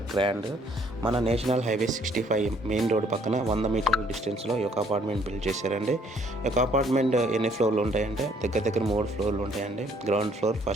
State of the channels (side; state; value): both; normal; correlation 0.63